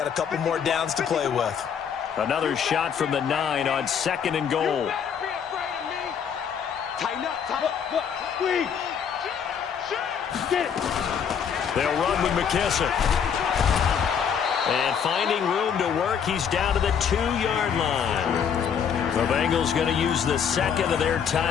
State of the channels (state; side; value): quieter; right; 7.5 dB